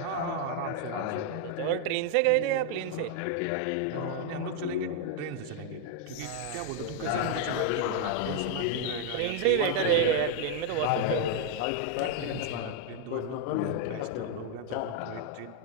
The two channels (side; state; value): both; different; correlation 0.00